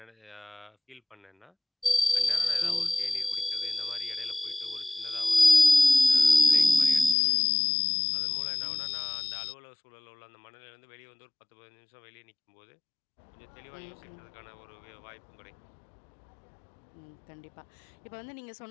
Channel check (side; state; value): right; drops out; at 7.2 s